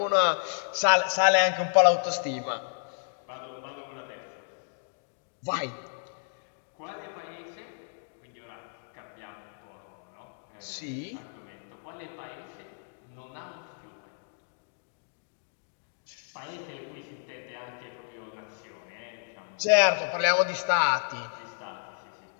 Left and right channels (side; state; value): right; silent; digital silence